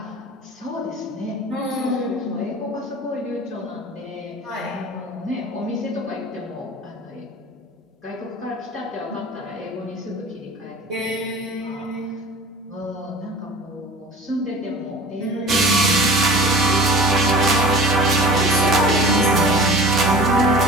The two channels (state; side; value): normal; both; correlation 0.41